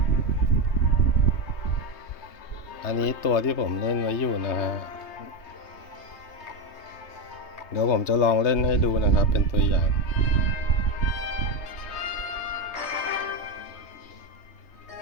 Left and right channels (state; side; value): late; right; 3.2 ms